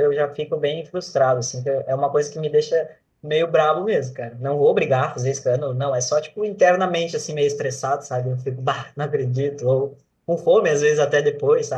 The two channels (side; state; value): both; identical; correlation 1.00